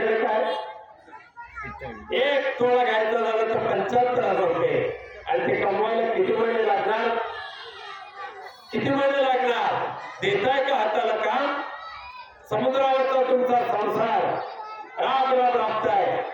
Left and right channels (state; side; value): identical; both; correlation 1.00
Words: काय, एक तोळा घ्यायचा झालं तर 75,000 रुपये. आणि ते कमवायला किती महिने लागणार, किती महिने लागणार. देताय का हाताला काम. समुद्रावरचा तुमचा संसार राब राब राबताय,